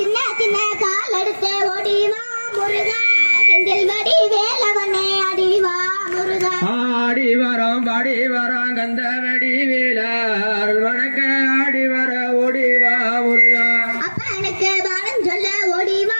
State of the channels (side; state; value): both; inverted; correlation -1.00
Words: சின்ன கால் எடுத்து ஓடிவா முருகா செந்தில் வடி வேலவனே அடிவா முருகா ஆடி வரோம் பாடி வரோம் கந்த வெடி வீலர் வணக்க ஆடி வர ஓடிவா முருகா அப்பனுக்கு பாடம் சொல்ல ஓடிவா